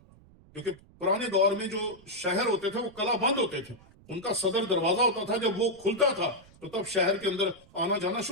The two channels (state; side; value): noise; right; rumble, 25 dB below the sound